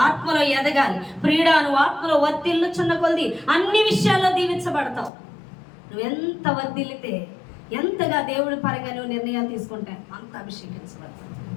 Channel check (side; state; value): right; drops out; at 5.1 s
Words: ఆత్మలో ఎదగాలి. ప్రియుడా, నువ్వు ఆత్మలో వర్ధిల్లుచున్న కొలది అన్ని విషయాల్లో దీవించబడతావు. నువ్వు ఎంత వర్ధిల్లితే, ఎంతగా దేవుడి పరంగా నువ్వు నిర్ణయాలు తీసుకుంటే అంత అభిషేకించబడతావు.